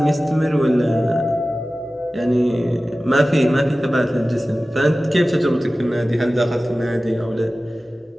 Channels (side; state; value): both; normal; correlation 0.96